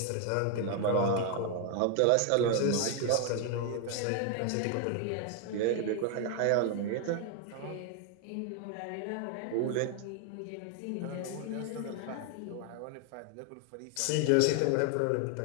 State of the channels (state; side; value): different; both; correlation 0.01